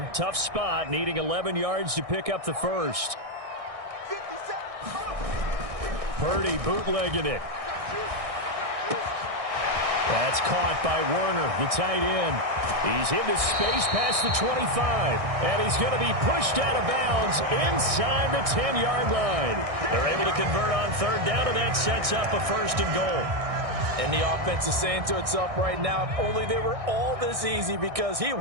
Tough spot. Needing 11 yards to pick up the first. Purdy bootlegging it. That's caught by Werner, the tight end. He's into space past the 25. And he's going to be pushed out of bounds inside the 10-yard line. They're able to convert on 3rd down, and that sets up a 1st and goal. And the offense is saying to itself right now, if only they were all this easy, because he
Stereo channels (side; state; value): left; late; 1.6 ms